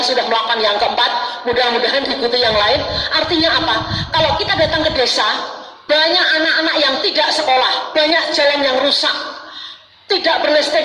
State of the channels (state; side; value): identical; both; correlation 1.00